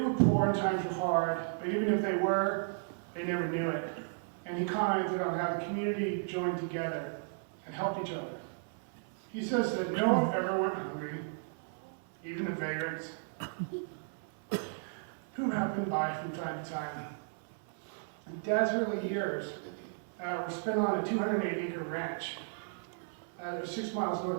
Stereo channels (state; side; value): silent; left; 55 dB below the other